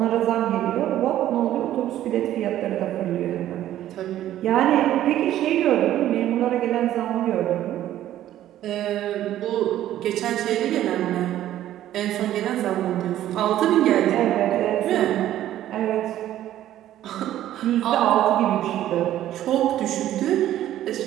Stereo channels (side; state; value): left; quieter; 12.7 dB